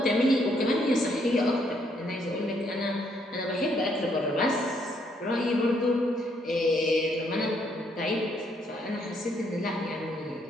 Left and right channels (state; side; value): normal; both; correlation 0.71